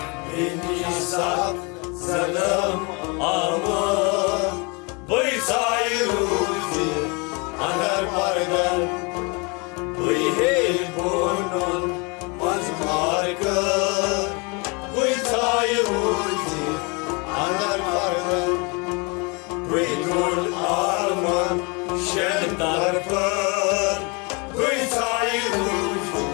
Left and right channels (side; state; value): right; quieter; 30.5 dB